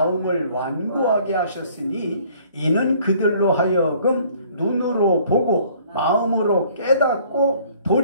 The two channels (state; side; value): inverted; both; correlation -0.57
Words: 완고하게 하셨으니 이는 그들로 하여금 눈으로 보고 마음으로 깨닫고